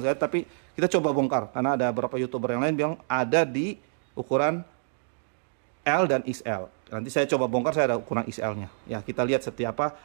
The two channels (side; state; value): left; silent; digital silence